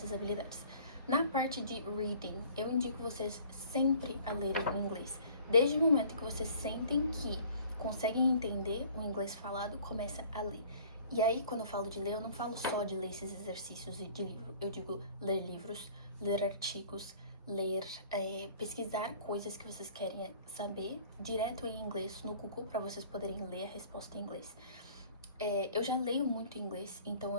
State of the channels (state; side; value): inverted; both; correlation -0.51